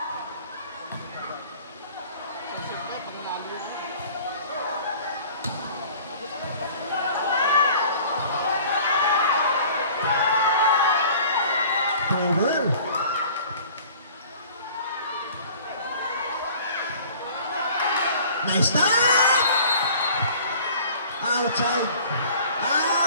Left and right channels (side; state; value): both; inverted; correlation -0.48